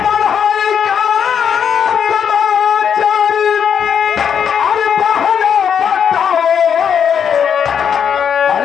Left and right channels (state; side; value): quieter; right; 7.8 dB